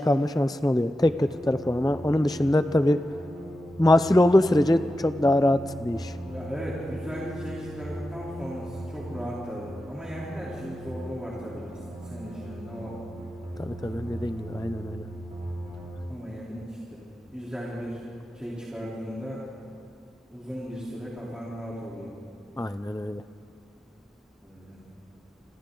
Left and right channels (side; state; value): both; normal; correlation 0.90